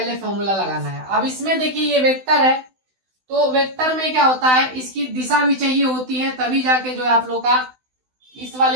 फॉर्मूला लगाना है। अब इसमें देखिए ये वेक्टर है, तो वेक्टर में क्या होता है, इसकी दिशा भी चाहिए होती है, तभी जाके जो है आप लोग का इस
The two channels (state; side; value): late; left; 16 ms